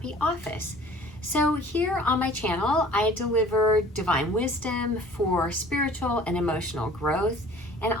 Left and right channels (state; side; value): normal; both; correlation 0.48